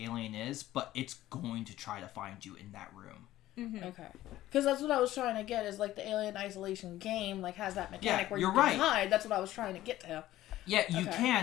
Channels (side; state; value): right; quieter; 14.7 dB